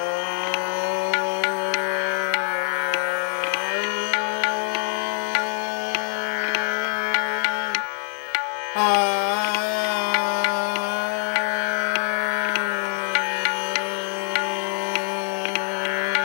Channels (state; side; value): silent; right; 62 dB below the other